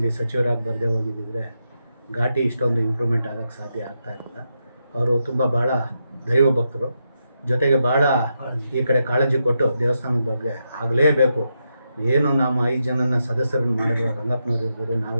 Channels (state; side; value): inverted; both; correlation -0.84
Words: ಸಚಿವರಾಗಿ ಬರದೇ ಹೋಗಿದ್ದಿದ್ರೆ ಘಾಟಿ ಇಷ್ಟೊಂದು ಇಂಪ್ರೂವ್ಮೆಂಟ್ ಆಗೋಕ್ಕೆ ಸಾಧ್ಯ ಆಗ್ತಾಯಿರಲಿಲ್ಲ. ಅವರು ತುಂಬ ಭಾಳ ದೈವ ಭಕ್ತರು, ಜೊತೆಗೆ ಭಾಳ ಈ ಕಡೆ ಕಾಳಜಿ ಕೊಟ್ಟು ದೇವಸ್ಥಾನದ ಬಗ್ಗೆ ಆಗಲೇಬೇಕು. ಏನು ನಮ್ಮ 5 ಜನನ ಸದಸ್ಯರನ್ನು ಮಾಡಿದ್ರು, ರಂಗಪ್ಪನವ್ರು ಇರ್ಬೋದು,